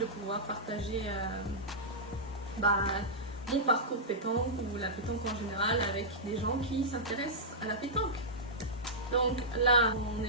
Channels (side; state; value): both; normal; correlation -0.12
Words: pouvoir partager mon parcours pétanque ou la pétanque en général avec des gens qui s'intéressent à la pétanque. Donc là, on